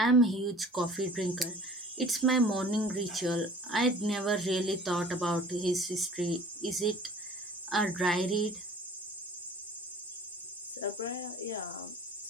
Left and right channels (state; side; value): normal; both; correlation 0.47